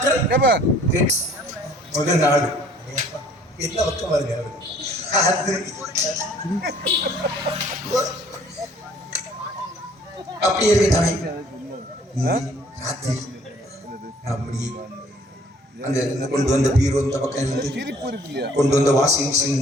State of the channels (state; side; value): normal; both; correlation 0.57